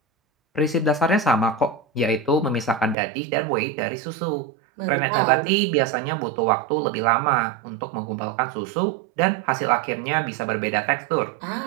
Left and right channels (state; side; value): drops out; left; at 3.0 s